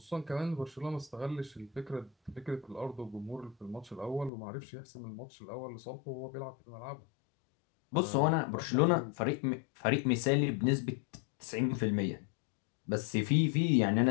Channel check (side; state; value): right; drops out; at 4.3 s